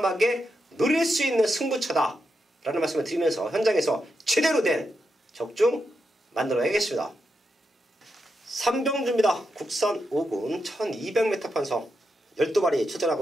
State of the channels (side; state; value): both; normal; correlation 0.85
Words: 누릴 수 있는 승부처다 라는 말씀을 드리면서 현장에서 제대로 된 적중 만들어야겠습니다. 삼병주입니다. 국산 5군 1200m 편성 12마리